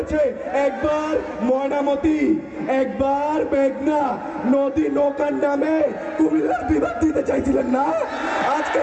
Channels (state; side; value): identical; both; correlation 1.00